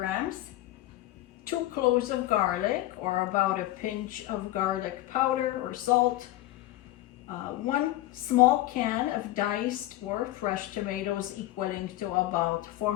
2 cloves of garlic, or about a pinch of garlic powder or salt, 1 small can of diced or fresh tomatoes equaling to about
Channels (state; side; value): quieter; right; 16.1 dB